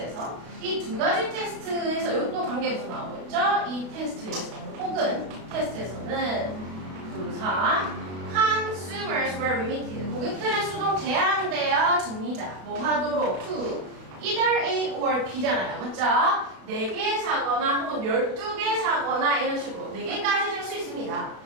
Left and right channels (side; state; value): left; late; 32 ms